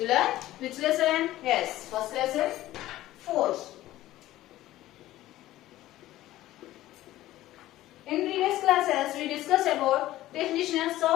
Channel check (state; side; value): quieter; right; 15.3 dB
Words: learned which lesson? Yes, first lesson force. In previous classes, we discussed about definitions